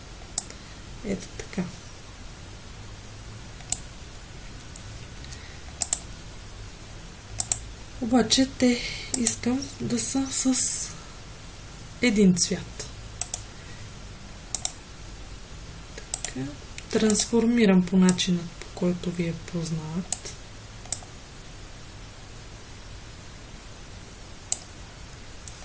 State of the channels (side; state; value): both; identical; correlation 1.00